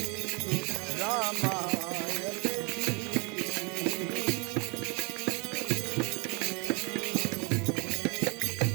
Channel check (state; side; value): quieter; left; 30.9 dB